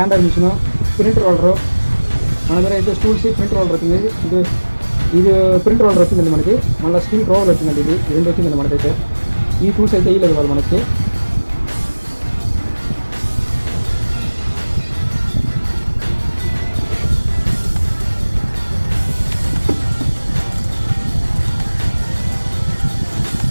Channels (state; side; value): inverted; both; correlation -1.00